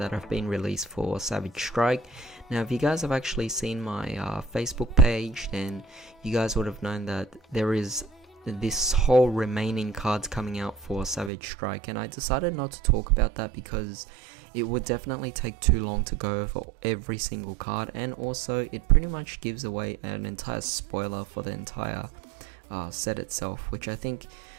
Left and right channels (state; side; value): drops out; left; at 11.3 s